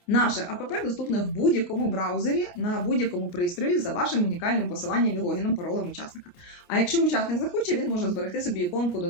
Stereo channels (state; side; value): late; right; 28 ms